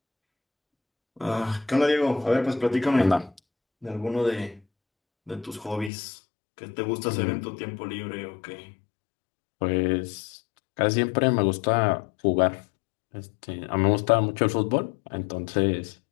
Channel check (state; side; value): drops out; right; at 5.9 s